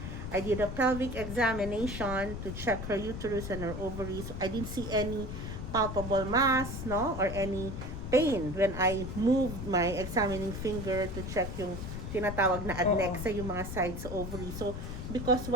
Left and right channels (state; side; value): noise; left; rumble, 6 dB below the sound